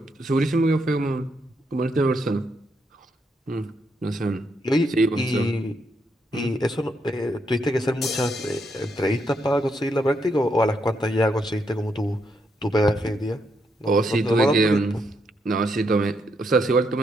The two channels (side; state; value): both; normal; correlation 0.78